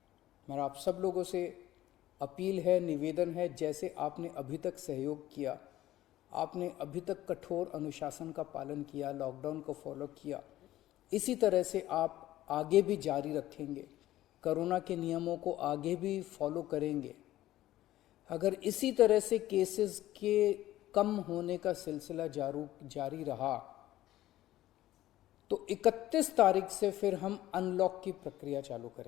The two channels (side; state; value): right; quieter; 14.7 dB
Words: मेरा आप सब लोगों से अपील है, निवेदन है, जैसे आपने अभी तक सहयोग किया, आपने अभी तक कठोर अनुशासन का पालन किया, लॉकडाउन को फॉलो किया, इसी तरह से आप आगे भी जारी रखेंगे, कोरोना के नियमों को आगे भी फॉलो करेंगे। अगर इसी तरह से केसेस के कम होने का सिलसिला जारी रहा तो 31 तारीख से फिर हम अनलॉक की प्रक्रिया चालू